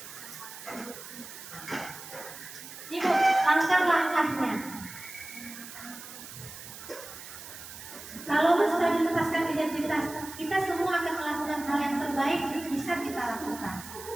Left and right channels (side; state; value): right; noise; hiss, 13 dB below the sound